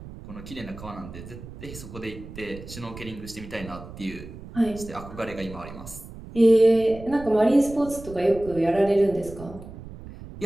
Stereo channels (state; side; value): noise; right; rumble, 14 dB below the sound